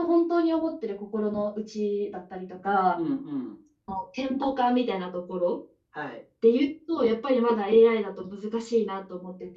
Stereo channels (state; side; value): identical; both; correlation 1.00